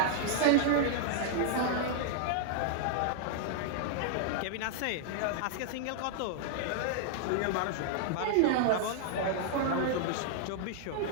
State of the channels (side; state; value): both; different; correlation 0.00